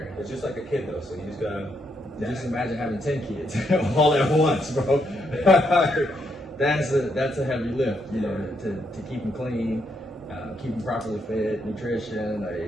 It's just like a kid though, so you just gotta. Just imagine having 10 kids all at once, bro. That's a heavy lift, you know, to keep them clean, keep them properly fed, nutrition,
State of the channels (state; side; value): normal; both; correlation 0.78